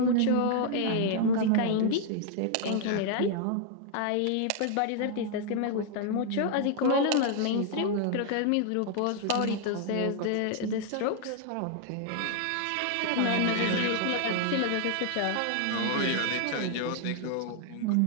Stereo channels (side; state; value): both; different; correlation 0.00